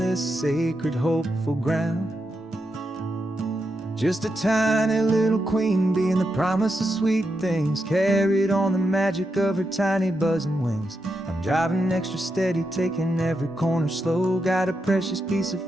sacred, hopeful ground. Just a tiny little queen bee and the promise of sweet things, carried on the magic of her tiny buzzing wings. I'm driving extra steady, taking every corner slow. Got a precious piece of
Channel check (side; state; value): both; normal; correlation 0.85